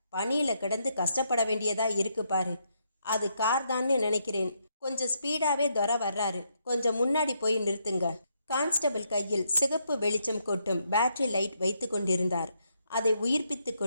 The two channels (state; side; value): inverted; both; correlation -0.77